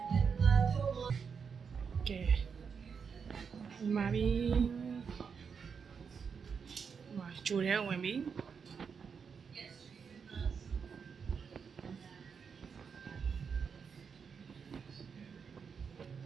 ကဲဒီမှာပြီးမှာဂျိုထဲဝင်ပြီ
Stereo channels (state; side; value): quieter; left; 6.2 dB